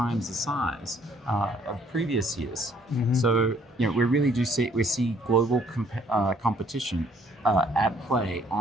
the size of previous years. So we really do see global competition at play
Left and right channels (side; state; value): both; normal; correlation 0.63